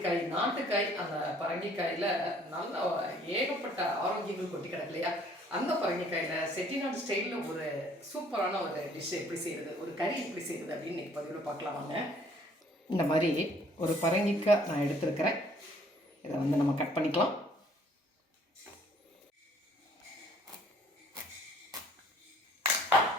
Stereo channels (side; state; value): both; normal; correlation 0.59